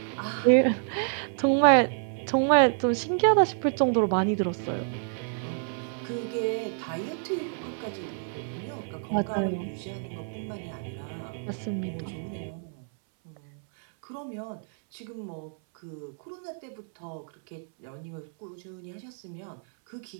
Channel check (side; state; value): left; silent; 59 dB below the other